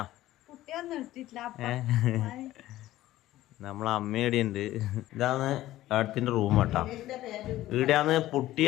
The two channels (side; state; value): right; quieter; 15.2 dB